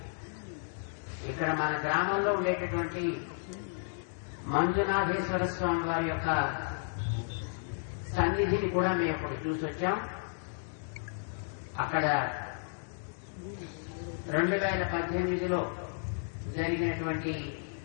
ఇక్కడ మన గ్రామంలో ఉండేటటువంటి మంజునాథేశ్వర స్వామి వారి యొక్క సన్నిధిని కూడా మేము ఇప్పుడు చూసొచ్చాం. అక్కడ 2018లో జరిగినటువంటి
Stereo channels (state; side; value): silent; right; digital silence